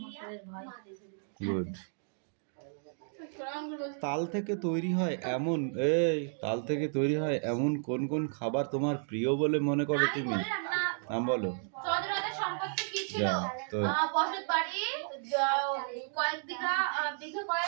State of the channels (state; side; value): silent; left; 56 dB below the other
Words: গুড। তাল থেকে তৈরি হয় এমন কোন কোন খাবার তোমার প্রিয় বলে মনে করো তুমি? নাম বলো। যা তো।